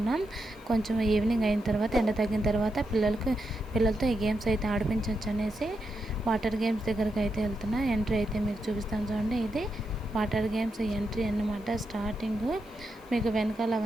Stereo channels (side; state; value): right; noise; hiss, 30 dB below the sound